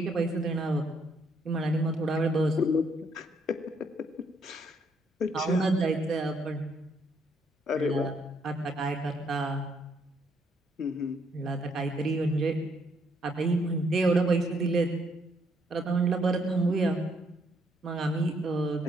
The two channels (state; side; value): normal; both; correlation 0.71